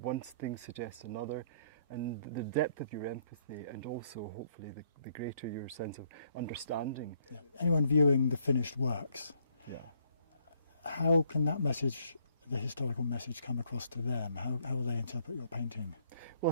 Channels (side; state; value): both; inverted; correlation -0.68